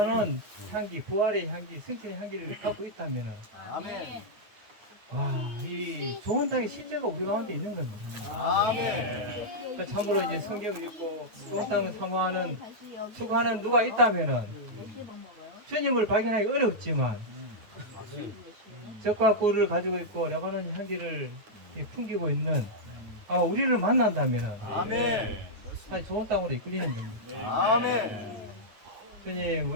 향기, 부활의 향기, 승천의 향기를 갖고 있다면은 아멘. 와, 이 좋은 땅의 실제가 우리 가운데 있는 겁니다. 아멘. 그 참으로 이제 성경을 읽고 좋은 땅을 사모하는 추구하는 누가 있다면은 주님을 발견하기 어렵지만 젖과 꿀을 가지고 있고 레바논 향기를 풍기고 있는 아마 우리를 만난다면은 아멘. 사실 좋은 땅으로 이끌리는 겁니다. 아멘. 주님,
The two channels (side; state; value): left; late; 9.3 ms